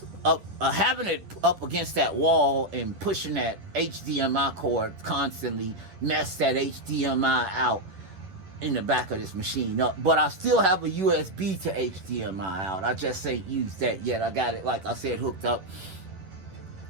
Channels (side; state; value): left; late; 11 ms